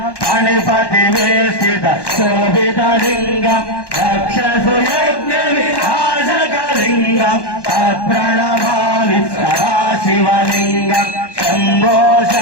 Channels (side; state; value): right; late; 1.1 ms